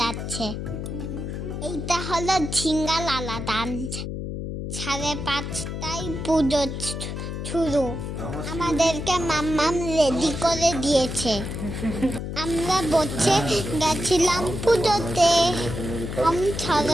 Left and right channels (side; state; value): left; noise; hum, 5 dB below the sound